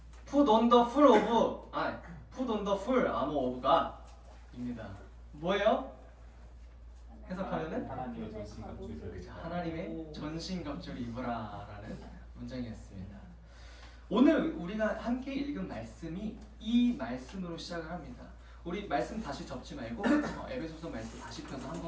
Put on the full armor of God 입니다. 뭐예요? 해석하면은 하나님의 전신갑주를 하나님의 전신갑주를 입으라라는 문장이었습니다. 오늘 우리가 함께 읽은 말씀이 이 말씀으로 시작을 합니다. 우리 말씀 다시 접지 말고 에베소서 말씀 다시 펴서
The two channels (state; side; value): identical; both; correlation 1.00